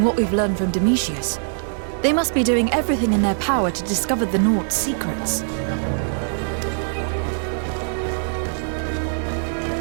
what we've learned from Domitius. They must be doing everything in their power to discover the Naughts' secrets.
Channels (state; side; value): silent; left; 64 dB below the other